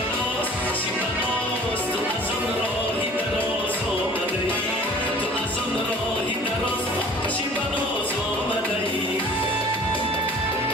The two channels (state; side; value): normal; both; correlation 0.48